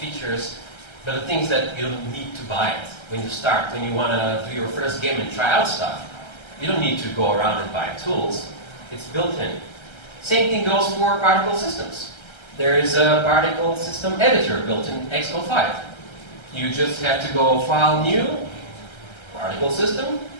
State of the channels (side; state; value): right; late; 1.3 ms